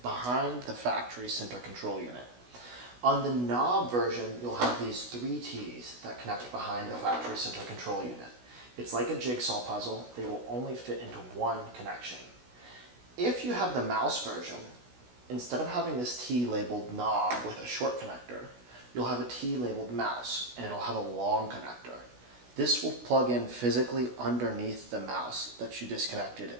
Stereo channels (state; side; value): late; left; 16 ms